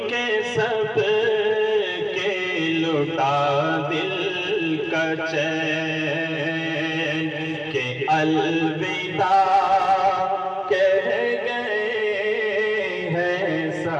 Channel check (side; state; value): both; identical; correlation 1.00